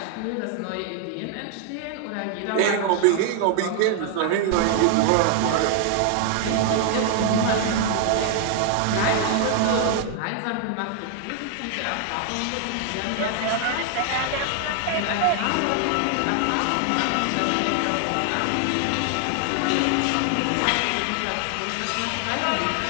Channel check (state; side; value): different; both; correlation 0.00